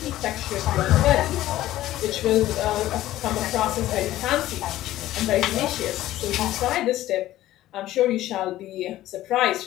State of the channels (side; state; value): right; quieter; 14.7 dB